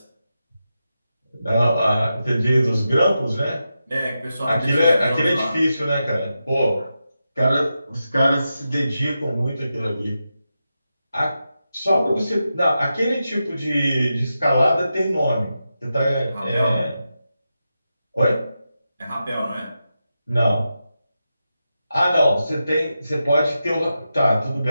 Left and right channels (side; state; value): both; inverted; correlation -0.89